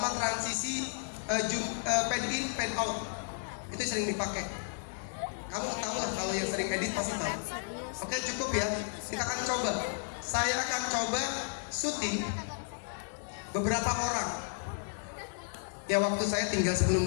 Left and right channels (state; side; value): silent; right; digital silence